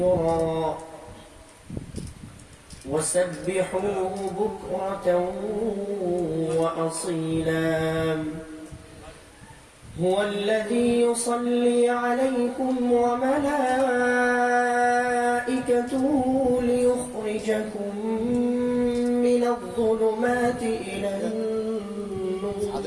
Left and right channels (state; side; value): identical; both; correlation 1.00